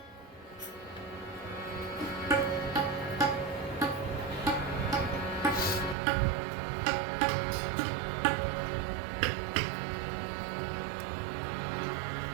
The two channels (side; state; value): left; drops out; at 6.0 s